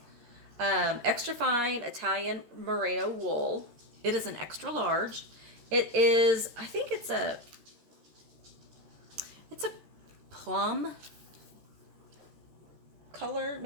extra fine Italian merino wool. It is an extra large. It is, I think it's a plum color,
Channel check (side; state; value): left; late; 13 ms